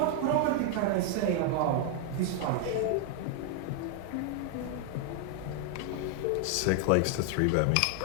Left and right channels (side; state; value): both; different; correlation 0.00